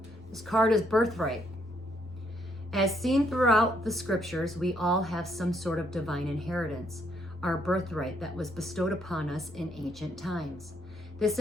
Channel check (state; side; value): normal; both; correlation 0.71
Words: This card is birthright. As seen throughout the scriptures, we all have some sort of divine inheritance, our birthright that was bestowed upon us in ancient times. This